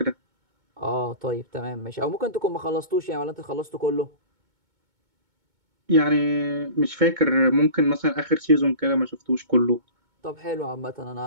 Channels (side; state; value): left; late; 2.2 ms